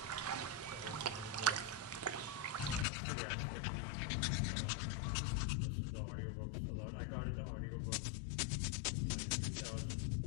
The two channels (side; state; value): right; drops out; at 2.9 s